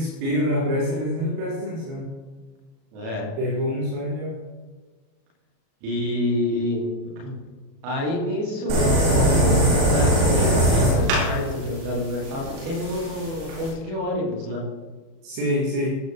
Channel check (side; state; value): left; late; 37 ms